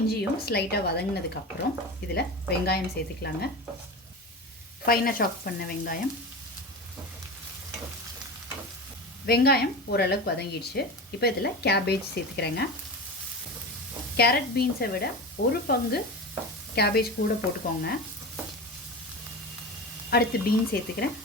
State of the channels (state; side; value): normal; both; correlation 0.27